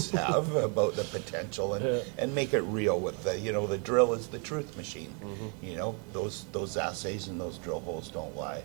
have about the potential, and make it real with the, the drill is the truth machine. Those assays and those drill holes don't lie.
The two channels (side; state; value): left; quieter; 36.6 dB